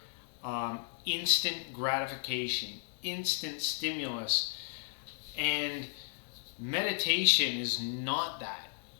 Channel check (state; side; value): silent; right; digital silence